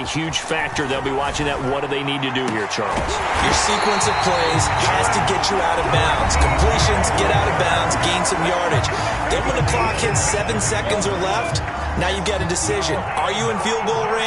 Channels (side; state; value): both; identical; correlation 1.00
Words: huge factor. They'll be watching that. What do they need to do here, Charles? Your sequence of plays has to get you out of bounds. Completions, get out of bounds, gain some yardage. Then when the clock hits 7 seconds or left, now you've got a decision. Are you in field goal